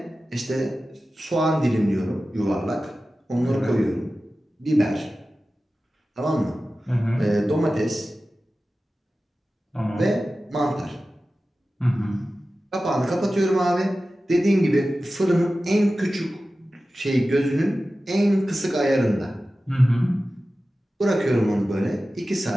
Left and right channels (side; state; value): both; normal; correlation 0.95